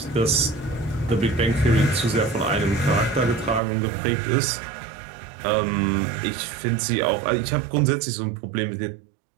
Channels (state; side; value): drops out; left; at 3.6 s